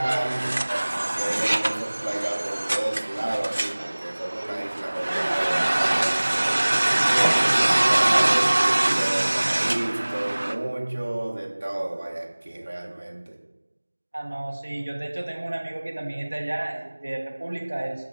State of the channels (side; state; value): both; inverted; correlation -1.00